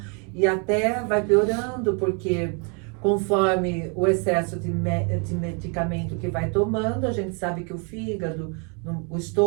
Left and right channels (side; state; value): left; quieter; 36.2 dB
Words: e até vai piorando, porque conforme o excesso de medicamento que vai tomando, a gente sabe que o fígado, o